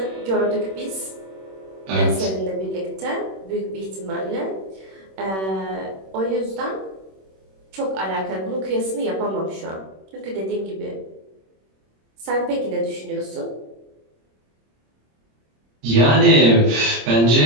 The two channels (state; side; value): late; left; 26 ms